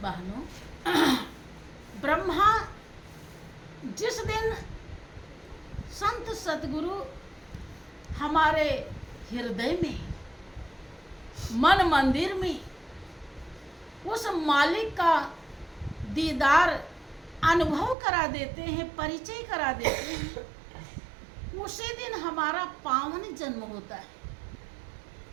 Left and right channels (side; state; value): left; drops out; at 17.9 s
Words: बहनों, ब्रह्मा जिस दिन संत सतगुरु हमारे हृदय में, मन मंदिर में उस मालिक का दीदार अनुभव करा देते हैं, परिचय करा देते हैं, उसी दिन हमारा पावन जन्म होता है।